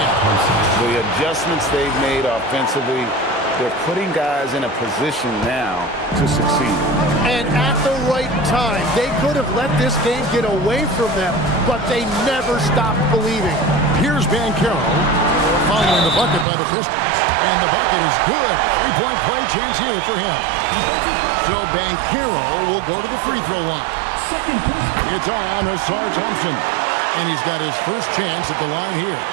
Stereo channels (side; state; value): left; drops out; at 16.4 s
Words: The adjustments they've made offensively, they're putting guys in a position now to succeed. And at the right time, they could have let this game get away from them, but they never stopped believing. Here's Banchero following the bucket by the Pistons. And the bucket is good. 3-point play chance here for him. So Banchero will go to the free throw line. It's on Asar Thompson. And he's got his first chance at the line here.